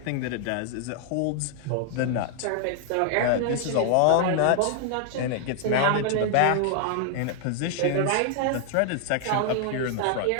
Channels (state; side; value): different; both; correlation 0.00